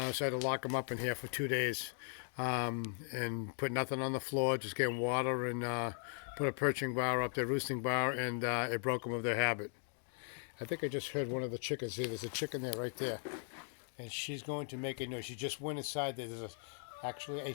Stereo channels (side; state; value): right; silent; 52 dB below the other